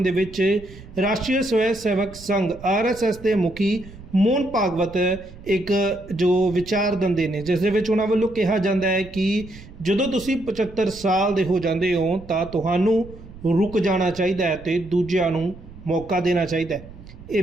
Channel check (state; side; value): noise; right; rumble, 17 dB below the sound